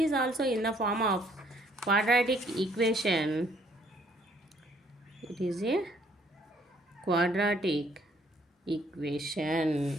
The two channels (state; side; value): normal; both; correlation 0.64